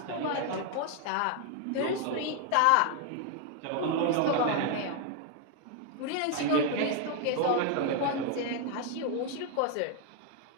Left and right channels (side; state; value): both; different; correlation 0.00